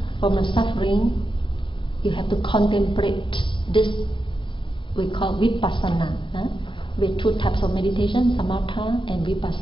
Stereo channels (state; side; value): late; right; 0.24 ms